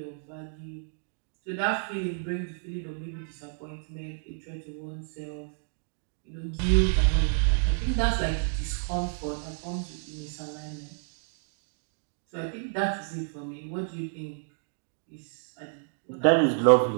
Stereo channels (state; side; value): silent; left; digital silence